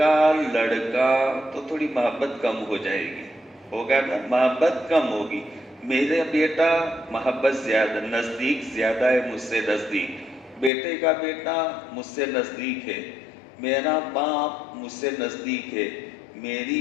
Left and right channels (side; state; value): right; drops out; at 10.7 s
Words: لڑکا تو تھوڑی محبت کم ہو جائے گی، ہوگا نا، محبت کم ہوگی۔ میرا بیٹا محبت زیادہ، نزدیک زیادہ ہے مجھ سے نزدیک، بیٹے کا بیٹا مجھ سے نزدیک ہے، میرا باپ مجھ سے نزدیک ہے،